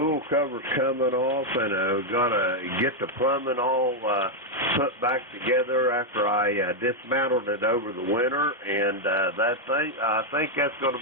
cover's coming off, and got to get the plumbing all put back together after I dismantled it over the winter, and I think that's going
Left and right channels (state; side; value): normal; both; correlation 0.00